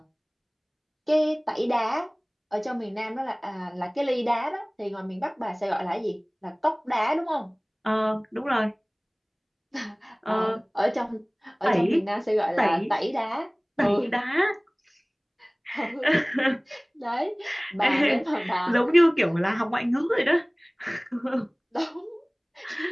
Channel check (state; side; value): identical; both; correlation 1.00